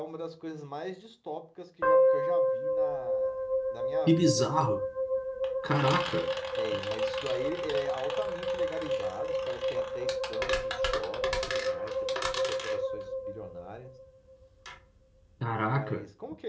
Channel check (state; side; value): identical; both; correlation 1.00